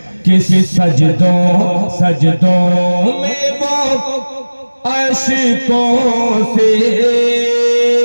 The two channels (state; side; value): inverted; both; correlation -1.00